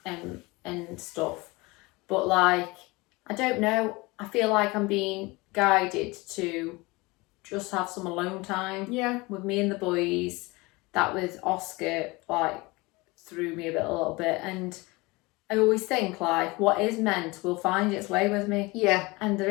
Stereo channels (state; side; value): quieter; right; 23.6 dB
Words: and stuff. But I don't know. I feel like I'm being guided to just have some alone time. Yeah. With me and the boys. That with Oscar threw me a little bit, and I always think what is meant will find its way with me. Yeah. And there